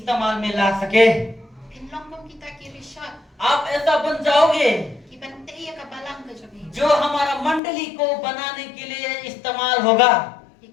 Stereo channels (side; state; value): right; drops out; at 7.6 s